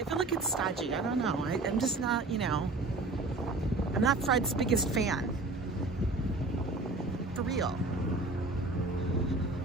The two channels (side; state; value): left; quieter; 3.1 dB